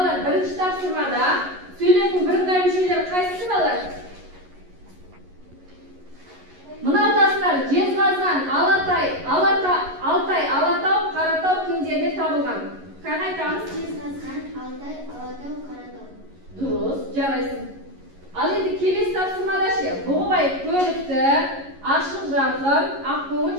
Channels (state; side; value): late; left; 11 ms